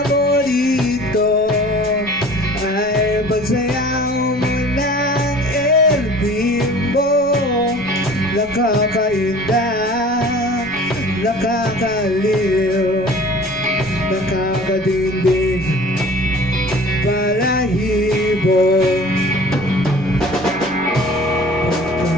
ay pagsayaw mo ng El Bimbo. Nakakainda, nakakaliw, nakakadindig, balahibo.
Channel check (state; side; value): noise; right; rumble, 21 dB below the sound